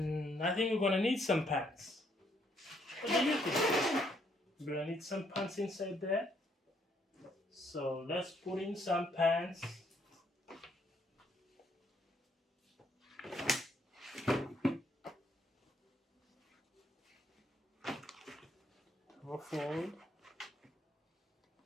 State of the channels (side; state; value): both; normal; correlation 0.70